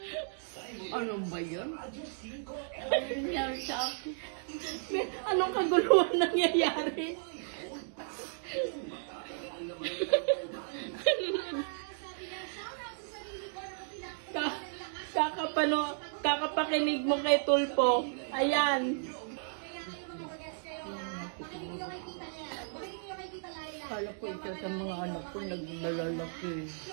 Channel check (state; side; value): silent; left; digital silence